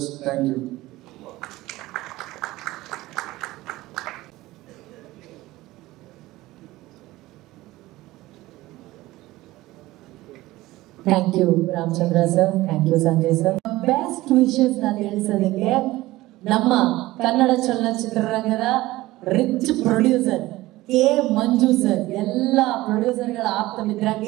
Thank you. Thank you, Ramchandra sir. Thank you, Sanjay sir. Best wishes ನಾನು ತಿಳಿಸೋದಕ್ಕೆ ನಮ್ಮ ಕನ್ನಡ ಚಲನಚಿತ್ರರಂಗದ ರಿಚ್ ಪ್ರೊಡ್ಯೂಸರ್ ಕೆ ಮಂಜು ಸರ್, ಎಲ್ಲ ಪ್ರೊಡ್ಯೂಸರ್ಗಳ ಆಪ್ತ ಮಿತ್ರ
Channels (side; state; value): left; quieter; 18.0 dB